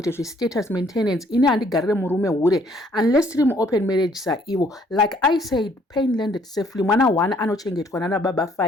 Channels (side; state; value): both; normal; correlation 0.63